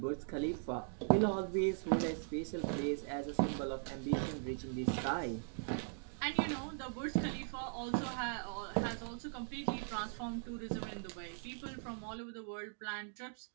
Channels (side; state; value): left; silent; digital silence